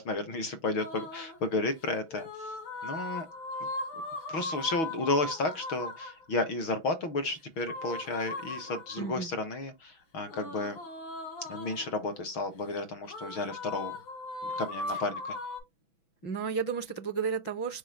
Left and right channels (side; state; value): right; late; 6.1 ms